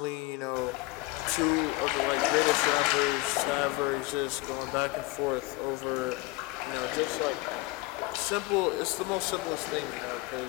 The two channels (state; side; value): quieter; right; 21.2 dB